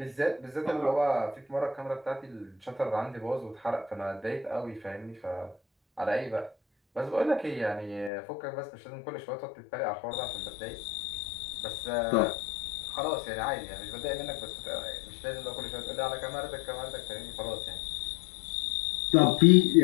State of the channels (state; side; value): drops out; right; at 8.1 s